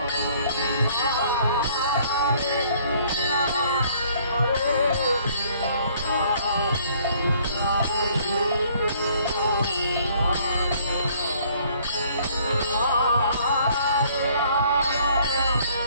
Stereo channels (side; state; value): both; inverted; correlation -0.60